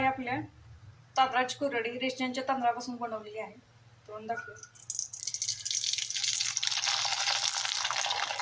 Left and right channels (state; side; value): identical; both; correlation 1.00